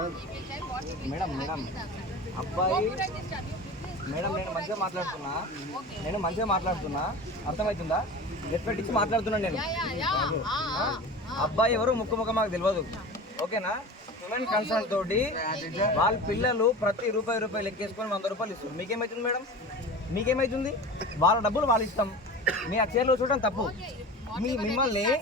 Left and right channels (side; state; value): both; normal; correlation 0.33